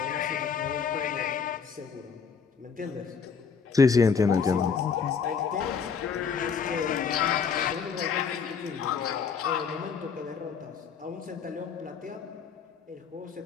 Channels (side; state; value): right; quieter; 6.1 dB